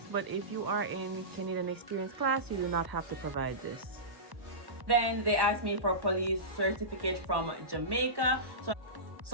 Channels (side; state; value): left; late; 1.1 ms